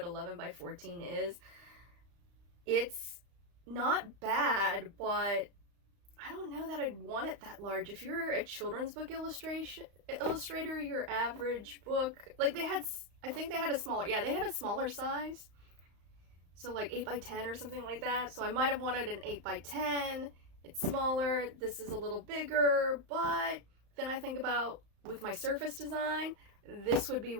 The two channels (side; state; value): left; late; 35 ms